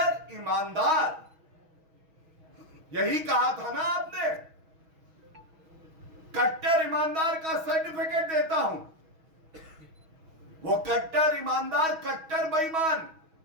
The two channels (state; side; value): late; left; 6.2 ms